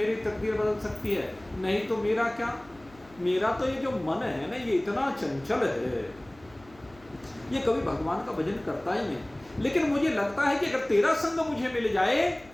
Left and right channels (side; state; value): left; noise; hum, 25 dB below the sound